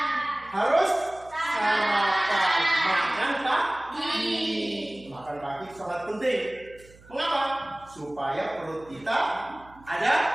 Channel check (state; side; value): noise; right; hum, 24 dB below the sound